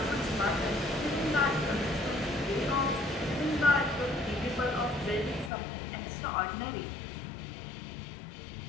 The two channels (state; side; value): drops out; right; at 5.5 s